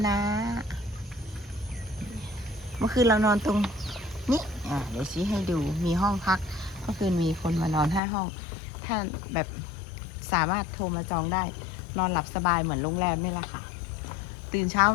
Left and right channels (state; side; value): drops out; right; at 8.0 s